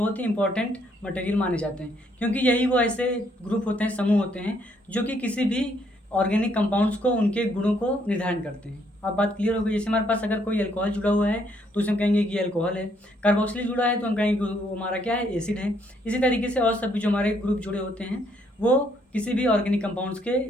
ही इंपॉर्टेंट मटेरियल माने जाते हैं, क्योंकि यही वो ऐसे ग्रुप होते हैं, समूह होते हैं जो कि किसी भी ऑर्गेनिक कंपाउंड्स को, उनके गुणों को निर्धारण करते हैं। अब बात क्लियर हो गई। जैसे हमारे पास अगर कोई अल्कोहल जुड़ा हुआ है तो उसे हम कहेंगे कि अल्कोहल है। कार्बोक्सिलिक जुड़ा है तो हम कहेंगे कि वो हमारा क्या है, एसिड है। इसी तरीके से और सभी जो हमारे ग्रुप जुड़े होते हैं वो किसी भी ऑर्गेनिक कंपाउंड्स के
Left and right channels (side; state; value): both; normal; correlation 0.70